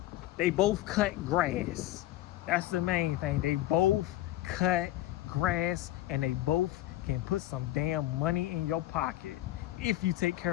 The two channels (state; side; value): quieter; right; 15.3 dB